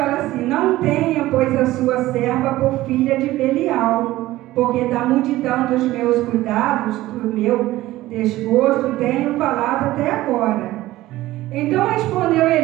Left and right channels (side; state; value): left; quieter; 16.6 dB